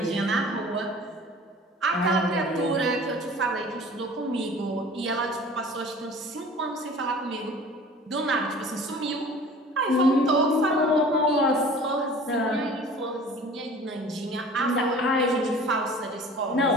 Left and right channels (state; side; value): normal; both; correlation 0.45